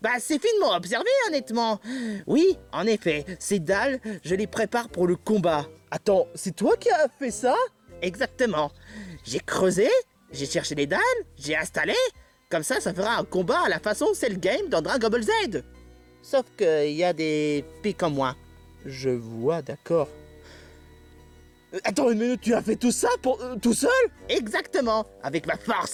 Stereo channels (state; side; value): identical; both; correlation 1.00